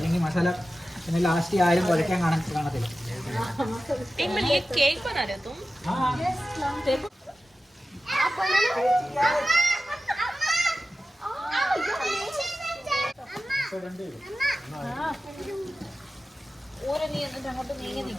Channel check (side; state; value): both; normal; correlation 0.94